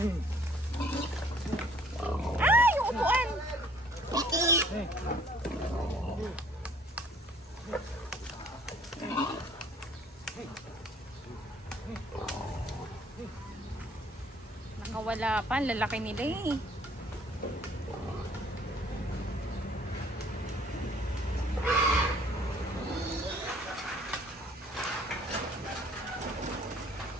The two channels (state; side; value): normal; both; correlation 0.58